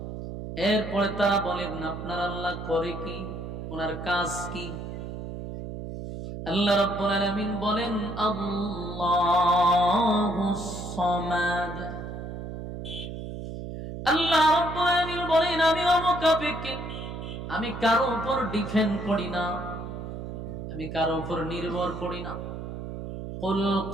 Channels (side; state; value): right; noise; hum, 8 dB below the sound